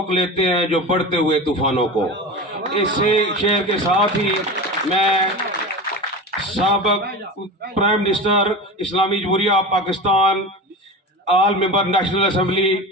لیتے ہیں جو بڑھتے ہوئے طوفانوں کو۔ اس شعر کے ساتھ ہی میں سابق پرائم منسٹر اسلامی جمہوریہ پاکستان، آل ممبر نیشنل اسمبلی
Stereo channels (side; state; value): both; normal; correlation 0.29